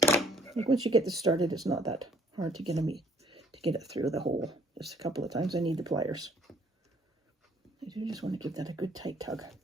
Like once you get this started, it's not that hard to get it through the hole. Just a couple of times I need the pliers. I do just want to give that a good tight tug.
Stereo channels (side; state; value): both; normal; correlation 0.60